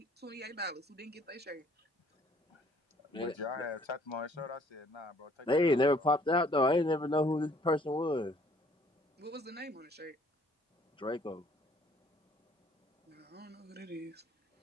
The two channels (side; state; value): both; normal; correlation 0.60